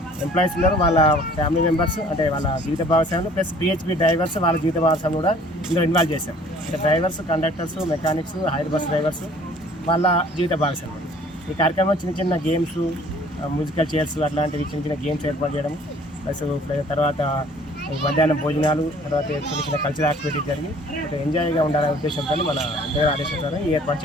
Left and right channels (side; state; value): both; normal; correlation 0.54